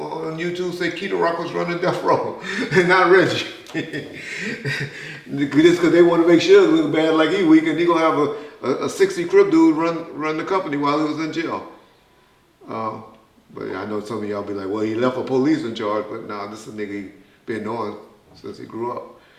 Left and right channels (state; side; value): identical; both; correlation 1.00